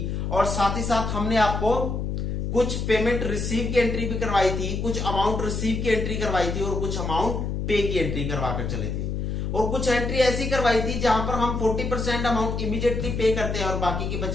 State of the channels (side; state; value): left; noise; hum, 2 dB below the sound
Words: और साथ ही साथ हमने आपको कुछ पेमेंट रिसीव की एंट्री भी करवाई थी, कुछ अमाउंट रिसीव की एंट्री करवाई थी और कुछ अमाउंट पे की एंट्री करवाकर चले थे। और कुछ एंट्री ऐसी करवाई थी जहां पर हम 40% अमाउंट इमीडिएटली पे करते हैं और बाकी की